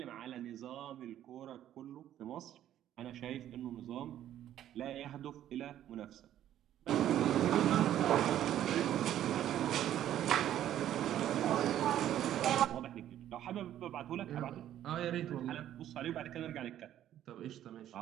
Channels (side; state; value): left; quieter; 11.7 dB